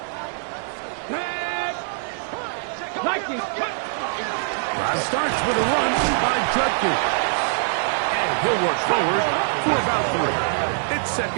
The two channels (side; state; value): left; silent; digital silence